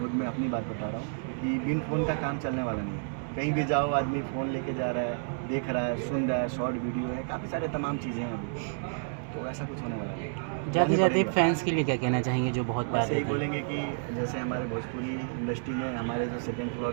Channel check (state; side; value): silent; left; digital silence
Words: में अपनी बात बता रहा हूँ कि बिन फ़ोन का काम चलने वाला नहीं है। कहीं भी जाओ आदमी फ़ोन लेके जा रहा है, देख रहा है, सुन रहा है, शॉर्ट वीडियो है, काफ़ी सारे तमाम चीज़ें हैं अभी, तो ऐसा कुछ होने वाला नहीं। जाते जाते फैंस के लिए क्या कहना चाहेंगे जो बहुत बस यही बोलेंगे कि जैसे हमारे भोजपुरी इंडस्ट्री में हमारे जो 2nd फ्लोर